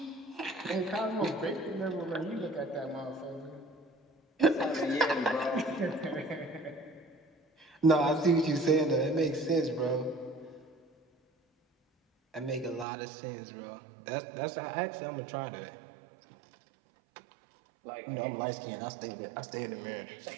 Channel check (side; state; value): left; drops out; at 12.9 s